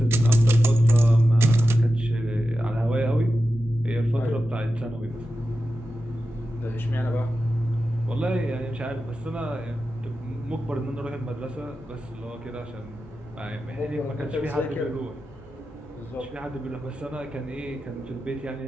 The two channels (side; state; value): both; normal; correlation 0.92